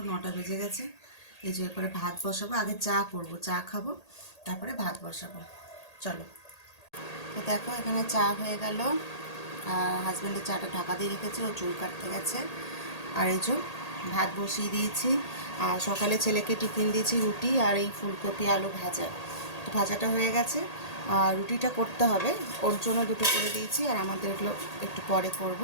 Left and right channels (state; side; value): late; right; 1.8 ms